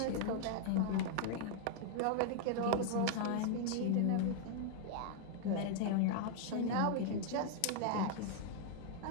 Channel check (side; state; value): both; different; correlation 0.00